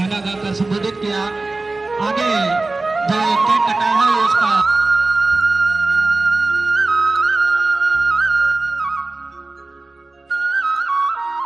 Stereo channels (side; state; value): left; quieter; 3.3 dB